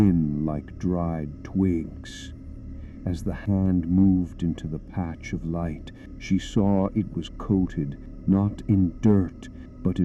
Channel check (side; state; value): both; identical; correlation 1.00